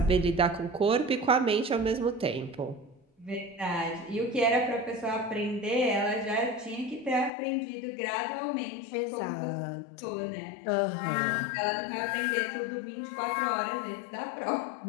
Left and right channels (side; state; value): right; drops out; at 7.3 s